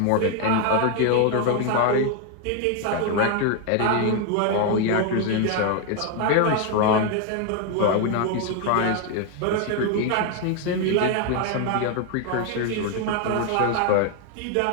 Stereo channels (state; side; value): different; both; correlation 0.01